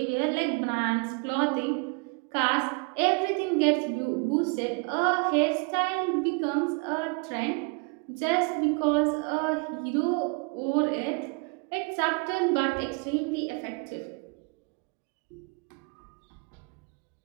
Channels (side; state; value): left; quieter; 32.7 dB